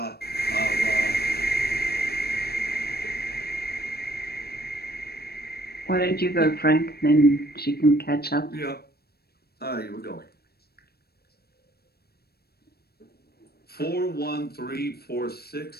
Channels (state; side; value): late; right; 0.46 ms